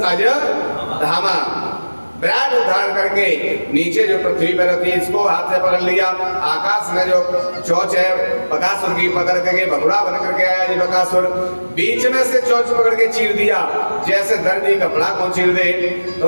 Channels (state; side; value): inverted; both; correlation -1.00